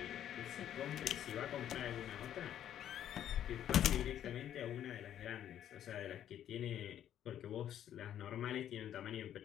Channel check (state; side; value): quieter; right; 10.7 dB